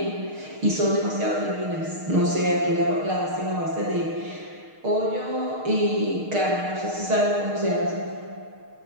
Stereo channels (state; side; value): late; left; 6.5 ms